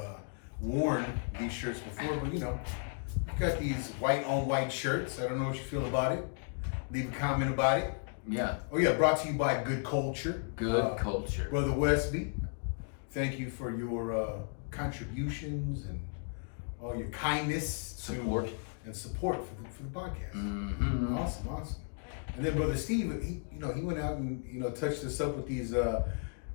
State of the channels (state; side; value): silent; right; 55 dB below the other